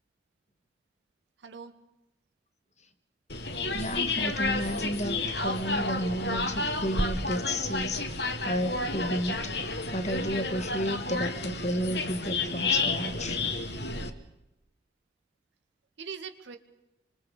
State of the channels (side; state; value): both; normal; correlation 0.26